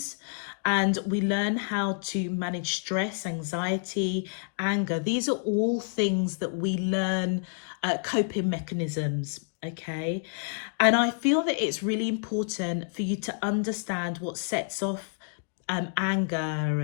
and we learn how to manage stress, anxiety, anger. These are all things that we learn, coping mechanisms. Okay, and I feel that it's really important for you to understand what sets off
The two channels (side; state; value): right; silent; digital silence